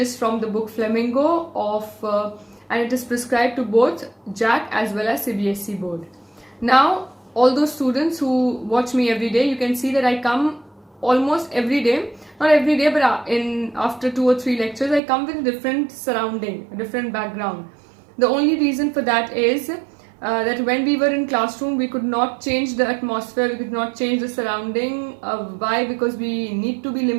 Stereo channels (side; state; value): left; drops out; at 15.0 s